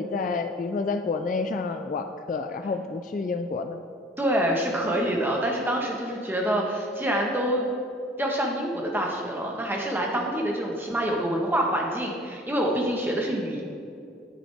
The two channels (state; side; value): normal; both; correlation 0.48